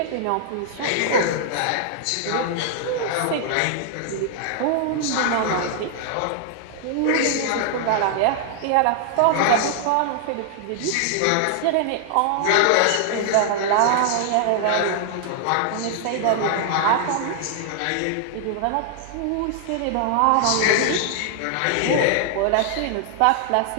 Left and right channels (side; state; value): both; different; correlation -0.01